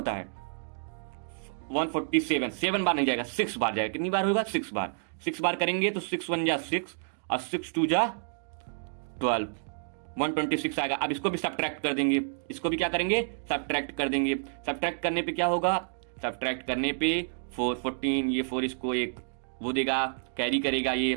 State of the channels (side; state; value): left; silent; digital silence